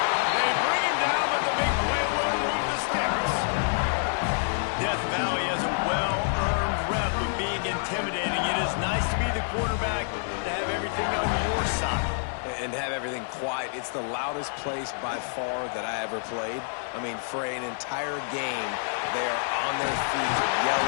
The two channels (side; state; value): right; silent; digital silence